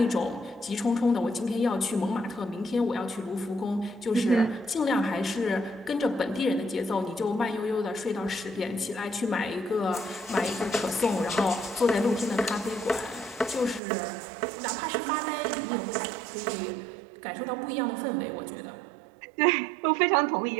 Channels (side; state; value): left; drops out; at 13.8 s